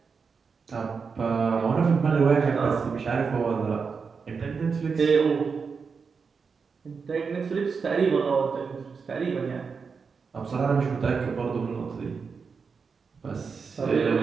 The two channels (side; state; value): left; quieter; 5.4 dB